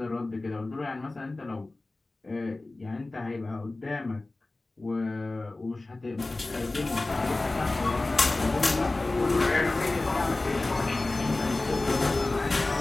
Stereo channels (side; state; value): right; quieter; 3.1 dB